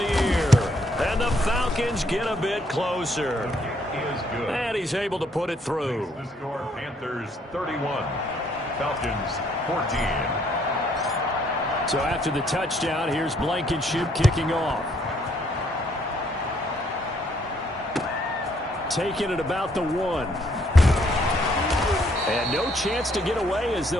year. And the Falcons get a bit closer. And he's able to put it through. The score, Panthers 31, Falcons 14. So after the touchdown, here's Blankenship kicking off. Taking it about the 1. And no chance to get away as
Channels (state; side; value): normal; both; correlation 0.68